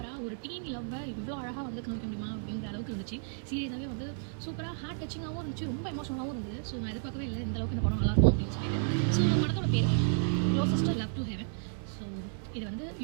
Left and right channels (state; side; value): silent; left; 56 dB below the other